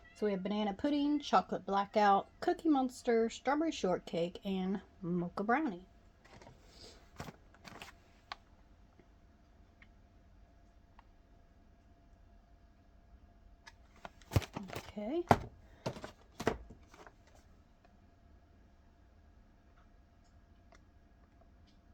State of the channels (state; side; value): identical; both; correlation 1.00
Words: So we have banana pudding, chocolate blackout, cookie monster, strawberry shortcake, and mocha brownie. Okay.